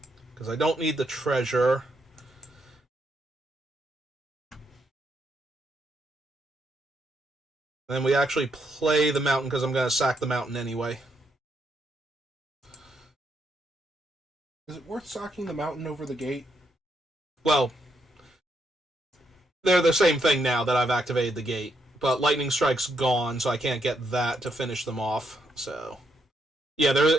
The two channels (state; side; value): normal; both; correlation 0.77